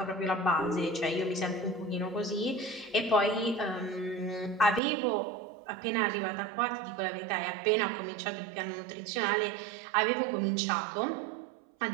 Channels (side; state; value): left; drops out; at 4.8 s